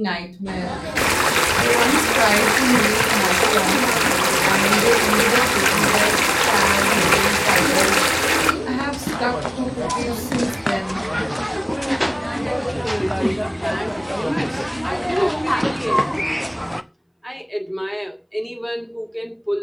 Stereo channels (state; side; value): identical; both; correlation 1.00